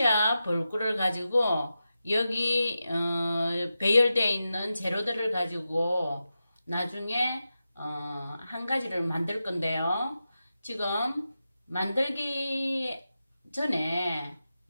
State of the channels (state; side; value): inverted; both; correlation -0.91